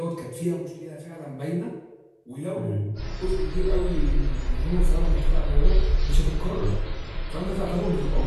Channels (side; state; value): both; identical; correlation 1.00